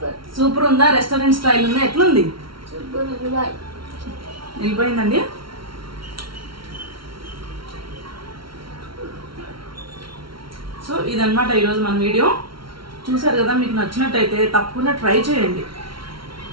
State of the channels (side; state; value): left; late; 0.74 ms